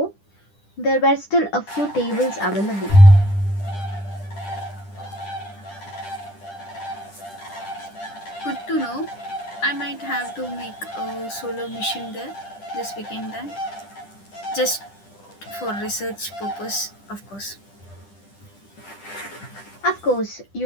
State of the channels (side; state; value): right; late; 10 ms